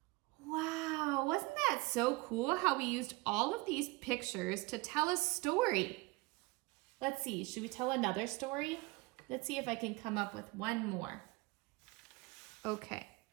Wow, wasn't that so cool how we used all of these pictures to tell a story? Let's see, should we tell another story? Let's see if I can come up with one more. Okay.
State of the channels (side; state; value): left; quieter; 23.7 dB